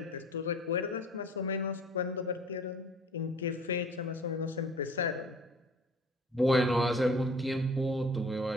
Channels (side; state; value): both; normal; correlation 0.48